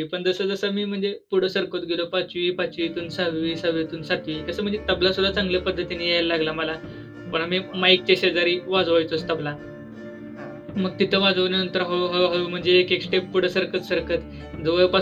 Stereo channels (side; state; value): both; identical; correlation 1.00